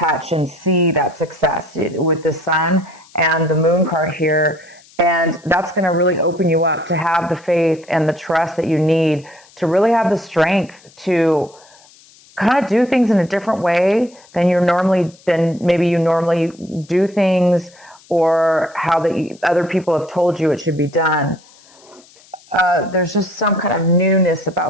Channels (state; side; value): noise; left; hiss, 27 dB below the sound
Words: and see that success with the Sun and the Moon card here. And that's going to really open you up to have the faith and the trust that you need to really have the strength to kind of do things in a different way than maybe you normally do things, or how the other people have told you it should be done. There's just some kind of newness